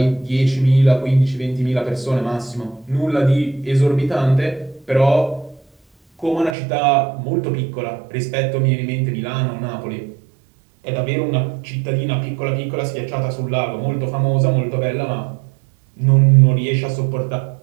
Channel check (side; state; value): left; drops out; at 6.6 s